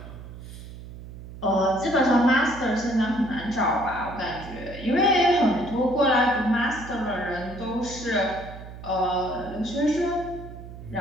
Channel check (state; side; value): noise; right; hum, 14 dB below the sound